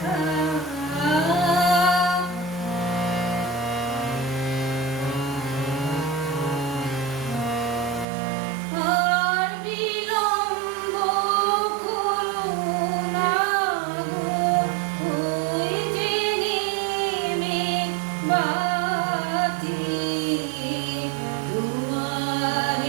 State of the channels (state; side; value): drops out; left; at 8.1 s